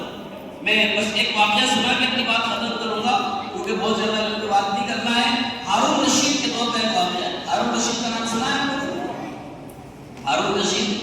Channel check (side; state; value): both; identical; correlation 1.00